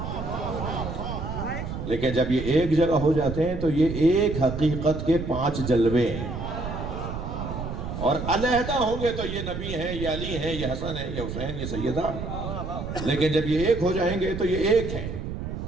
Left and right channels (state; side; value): noise; right; rumble, 6 dB below the sound